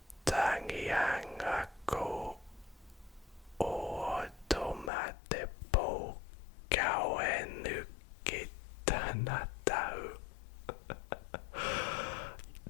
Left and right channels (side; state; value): right; drops out; at 4.9 s